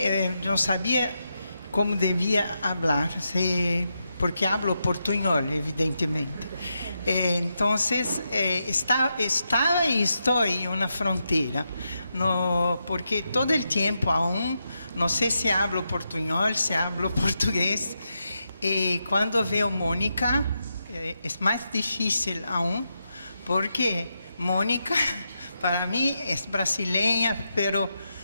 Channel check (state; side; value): inverted; both; correlation -0.85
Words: yo no sabía cómo debía hablar, porque hablo portuñol, evidentemente. Entonces, estaba y estoy en una frontera, no, porque todo el tiempo aún, no sé si hablo portuñol, si hablo portugués, y cuando veo Mónica, es más difícil aún, porque Mónica, para mí, es brasileña, pero